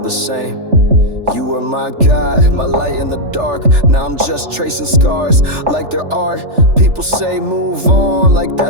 same. You were my guide, my light in the dark. Now I'm just tracing scars like they're art. People say move on like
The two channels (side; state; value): left; late; 3.4 ms